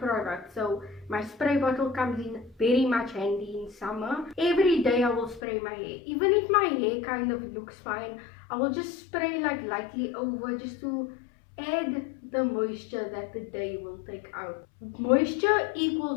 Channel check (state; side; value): drops out; right; at 5.4 s